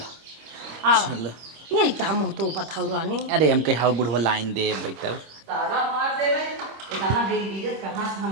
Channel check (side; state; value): left; late; 26 ms